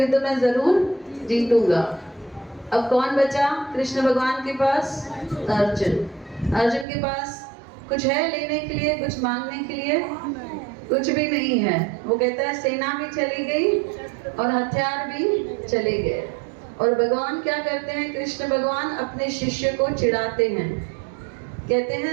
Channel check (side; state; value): left; drops out; at 6.9 s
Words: में जरूर जीतूंगा। अब कौन बचा कृष्ण भगवान के पास? अर्जुन। अर्जुन के पास कुछ है लेने के लिए, कुछ मांगने के लिए? कुछ भी नहीं है। वो कहता है सेना भी चली गई और हथियार भी चले गए। और भगवान क्या करते हैं? कृष्ण भगवान अपने शिष्य को चिढ़ाते हैं, कहते